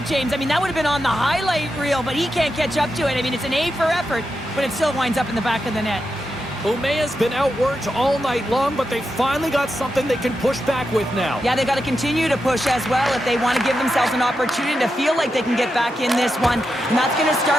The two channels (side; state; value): both; normal; correlation 0.87